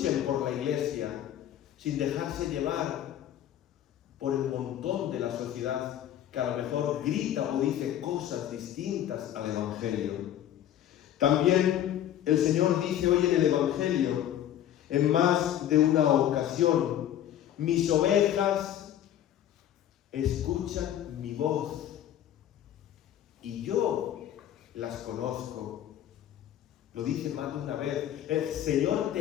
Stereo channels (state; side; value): quieter; right; 11.2 dB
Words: por la iglesia, sin dejarse llevar por el montón de la sociedad que a lo mejor grita o dice cosas distintas al Evangelio. También el Señor dice hoy en el Evangelio, en más de una ocasión, mis ovejas escuchan mi voz y yo las conozco. Lo dice más de una vez. El Señor